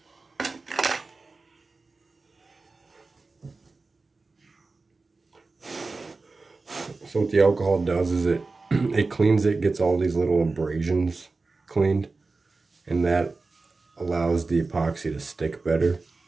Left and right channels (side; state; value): left; quieter; 3.8 dB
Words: So what the alcohol does is it cleans it, gets all these little abrasions cleaned, and that allows the epoxy to stick better.